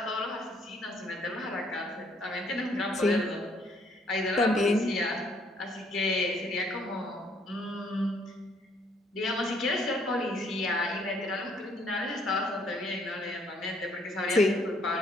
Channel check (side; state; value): both; normal; correlation 0.66